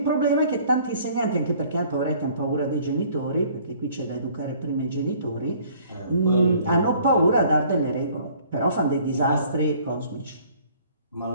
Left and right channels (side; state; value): both; inverted; correlation -0.56